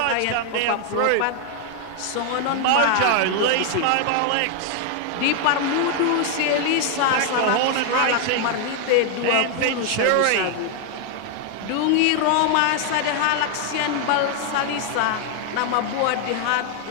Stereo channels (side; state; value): both; different; correlation 0.00